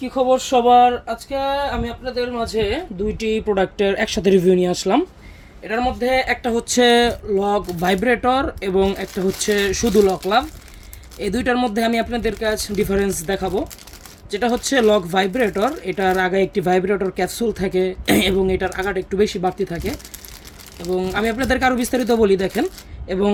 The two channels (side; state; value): both; identical; correlation 1.00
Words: কি খবর সবার? আজকে আমি আপনাদের মাঝে দুইটি প্রোডাক্টের একসাথে রিভিউ নিয়ে আসলাম। এটার মধ্যে একটা হচ্ছে লক ভাইব্রেটর এবং একটা হচ্ছে শুধু লক লাভ। এই দুইটার মধ্যে আমি আপনাদের কাছে ডিফারেন্স দেখাবো। যেটা হচ্ছে লক ভাইব্রেটর, এটার আগে একটি ভাইব্রেটর ক্যাপসুল থাকে এবং এটার আগাটা একটু বেশি বাড়তি থাকে। এবং আমি আপনাদেরকে আরও বিস্তারিত বলি, দেখেন। এবং